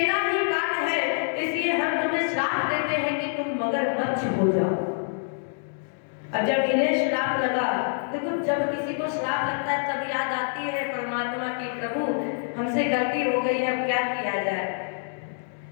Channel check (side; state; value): right; silent; digital silence